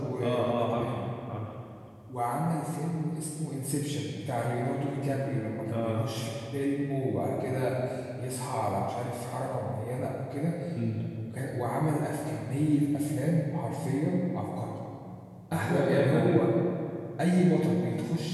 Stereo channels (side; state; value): both; identical; correlation 1.00